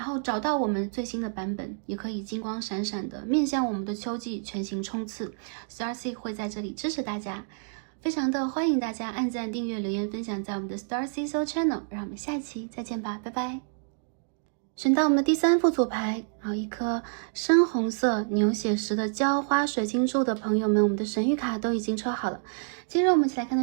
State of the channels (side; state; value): left; silent; digital silence